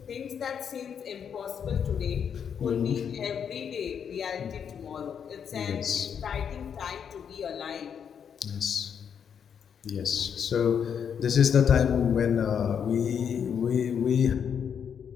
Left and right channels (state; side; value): quieter; right; 7.6 dB